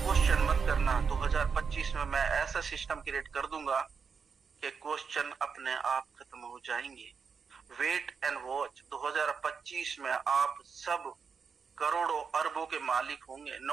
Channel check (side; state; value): left; quieter; 5.9 dB